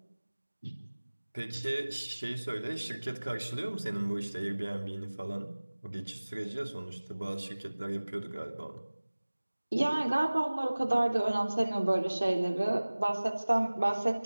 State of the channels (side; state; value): both; inverted; correlation -1.00